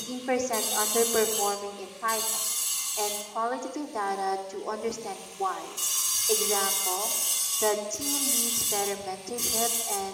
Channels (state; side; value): identical; both; correlation 1.00